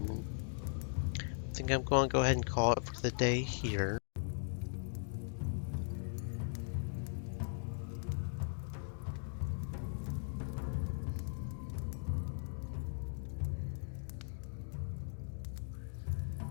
I think I'm going to go ahead and call it for the day here.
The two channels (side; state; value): right; silent; digital silence